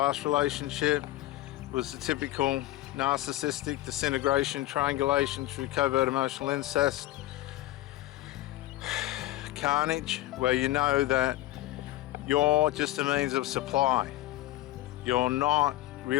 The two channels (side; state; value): right; quieter; 16.2 dB